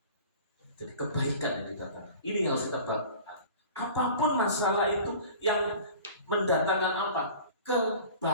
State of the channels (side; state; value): both; inverted; correlation -0.42